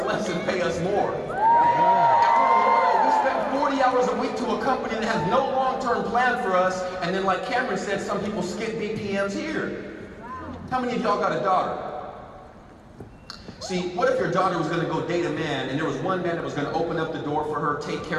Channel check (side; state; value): both; identical; correlation 1.00